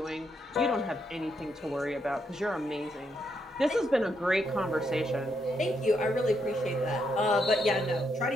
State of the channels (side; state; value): both; normal; correlation 0.78